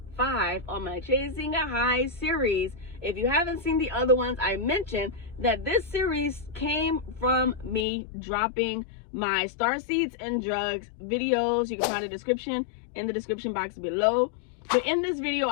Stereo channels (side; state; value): right; drops out; at 7.9 s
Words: 5 on my Chasing a High series. If you haven't seen the other ones, I mentioned that this series came from me dropping my Starseeds and drugs videos. You can find a description in the description box below. But in this video,